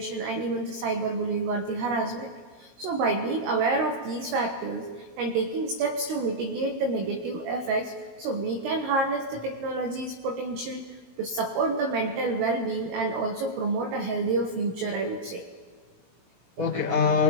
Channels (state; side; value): late; left; 16 ms